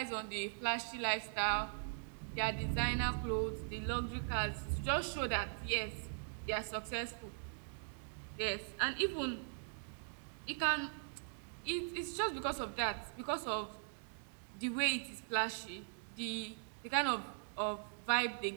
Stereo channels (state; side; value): silent; left; digital silence